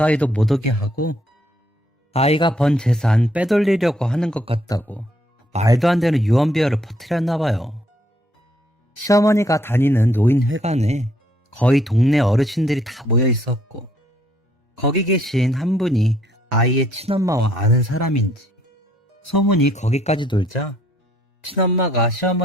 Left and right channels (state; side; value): normal; both; correlation 0.68